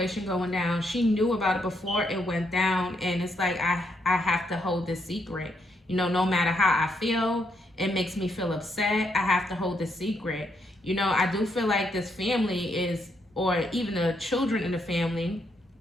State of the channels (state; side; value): normal; both; correlation 0.76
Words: going down. She knew about it before it went down, and it's like I have to hold this secret. You know, no matter how I feel, it makes me feel upset. I have to hold this secret. You know, I do feel like this family is, or even the children in the family,